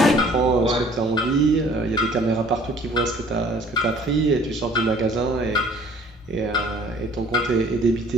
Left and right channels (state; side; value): normal; both; correlation 0.53